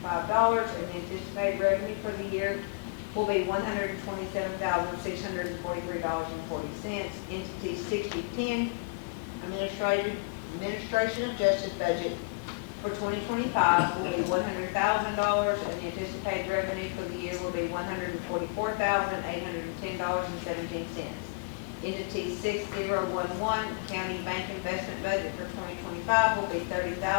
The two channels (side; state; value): right; quieter; 31.1 dB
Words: the anticipated revenue for the year will be $127,643.40. Entity 6010, Administration of Justice budget for 2025 will be $100,000, and the anticipated revenue for the year will be $144,810.17. Entity 6011, County Bank Investment budget for 2025 will be